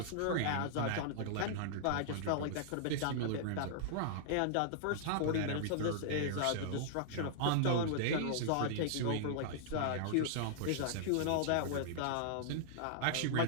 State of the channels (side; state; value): both; different; correlation -0.01